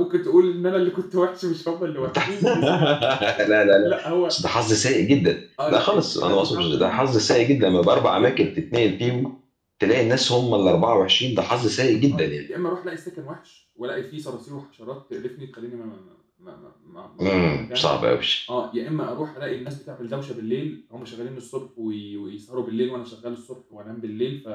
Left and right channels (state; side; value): identical; both; correlation 1.00